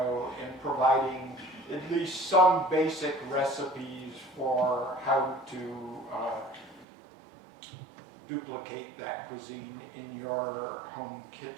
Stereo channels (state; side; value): drops out; left; at 6.9 s